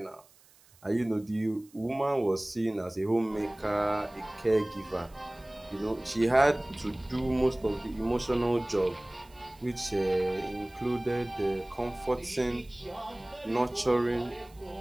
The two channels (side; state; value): right; noise; hiss, 28 dB below the sound